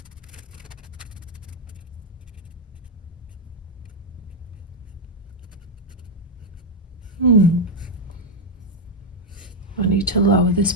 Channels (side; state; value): both; normal; correlation 0.01